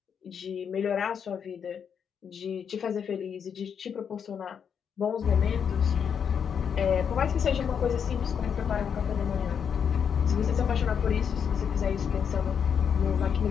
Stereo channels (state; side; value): quieter; right; 7.4 dB